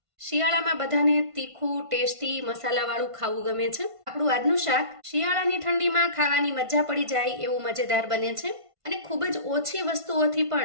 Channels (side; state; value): left; late; 1.5 ms